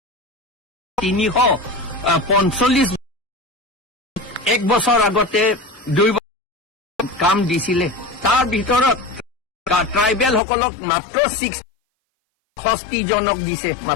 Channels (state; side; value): drops out; right; at 10.4 s